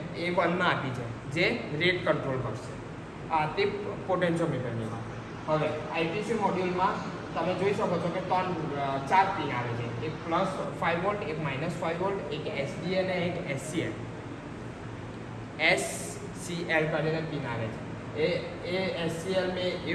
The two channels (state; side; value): identical; both; correlation 1.00